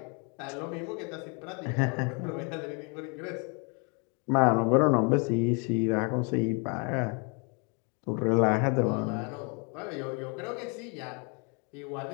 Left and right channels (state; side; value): quieter; right; 34.8 dB